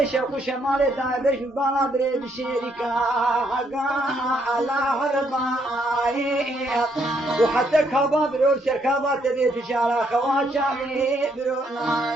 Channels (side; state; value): both; normal; correlation 0.72